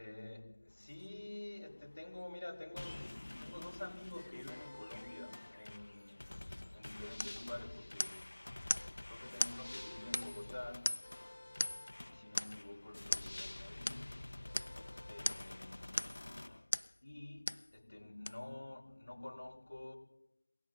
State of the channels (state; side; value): inverted; both; correlation -1.00